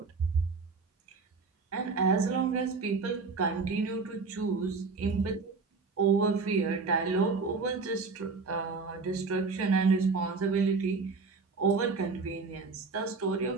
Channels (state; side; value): quieter; left; 4.4 dB